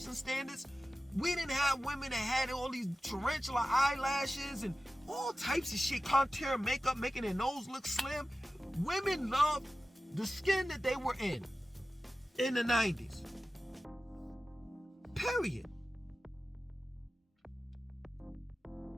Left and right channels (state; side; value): normal; both; correlation 0.95